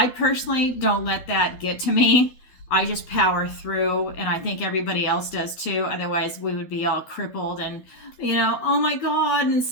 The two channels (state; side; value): late; right; 12 ms